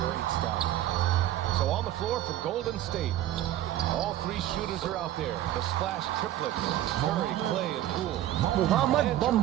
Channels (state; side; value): quieter; left; 13.0 dB